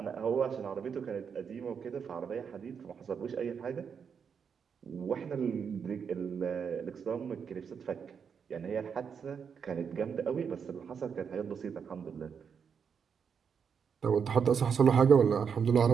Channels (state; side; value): quieter; left; 6.7 dB